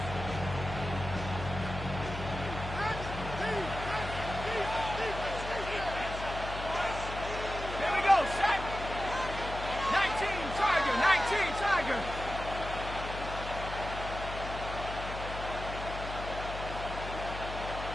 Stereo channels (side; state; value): left; noise; hum, 8 dB below the sound